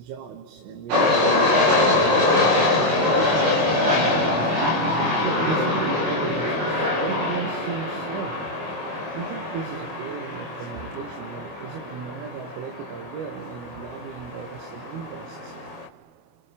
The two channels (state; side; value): late; left; 25 ms